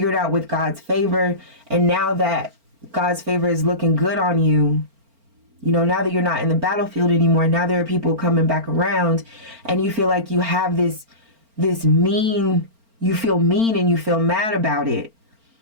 it out with God's favor, and now that God's favor is looking good on you, now that you're not in the battlefield anymore, now there are people coming back around, and you feel like you have this mean, you feel mean and you feel mad about it.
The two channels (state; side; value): late; left; 4.4 ms